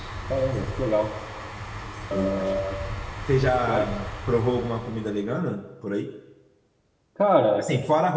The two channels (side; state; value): both; identical; correlation 1.00